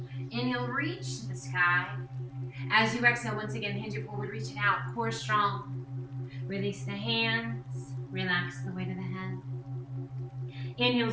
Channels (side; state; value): both; identical; correlation 1.00